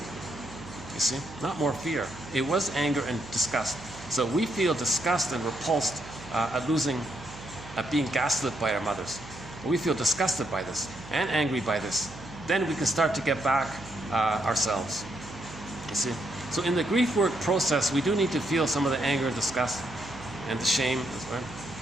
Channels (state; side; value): noise; right; hum, 16 dB below the sound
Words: You see? Not more fear. It was anger and disgust. So we feel disgust and repulsed at being gaslit by our mothers. We feel disgusted by this and angry by this. Then we can start to get back ourselves. You see? So in the grief work process, we do need to feel some of the anger and disgust and the shame as well.